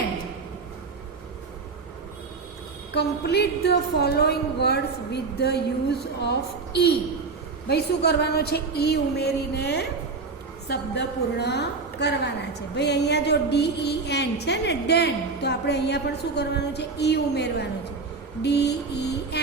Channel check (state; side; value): quieter; left; 4.3 dB